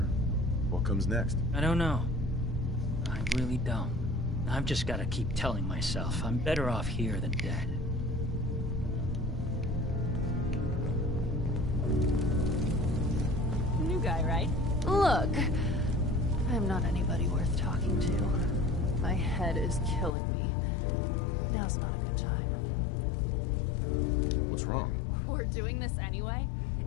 What comes next? I don't know. I really don't. I've just got to keep telling myself I'm better off here than dead. New guy, right? Look, I'm not anybody worth talking to. My head is killing me. Now's not a good time. What's wrong? We're doing this anyway?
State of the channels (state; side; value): drops out; right; at 20.2 s